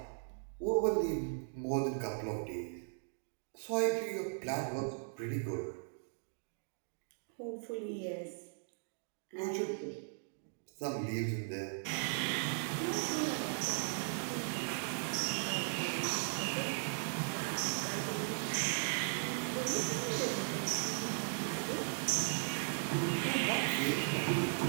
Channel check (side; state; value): left; silent; digital silence